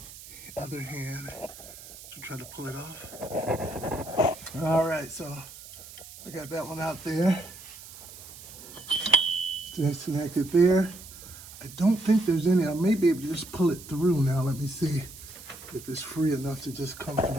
other hand to try to pull it off. All right, so I got that one out there. Disconnect it there. I don't think there's any. I may be able to just pull it through now. Let me see if it's free enough to just come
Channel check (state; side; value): noise; right; hiss, 16 dB below the sound